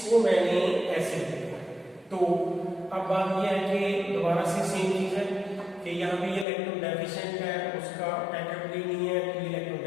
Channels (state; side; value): drops out; right; at 6.5 s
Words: मैंने ऐसे लिखा। तो अब बात यह है कि दोबारा से सेम चीज है कि यहाँ पे ये इलेक्ट्रॉन डेफिशिएंट है, उसका अटैचबिलिटी नहीं है, तो ये इलेक्ट्रॉन